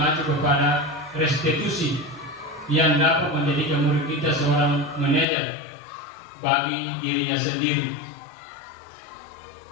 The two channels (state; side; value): drops out; right; at 5.2 s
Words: kepada restitusi yang dapat menjadikan murid kita seorang manajer bagi dirinya sendiri.